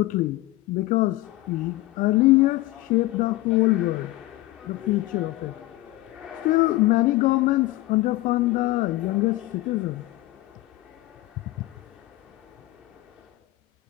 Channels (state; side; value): quieter; right; 18.3 dB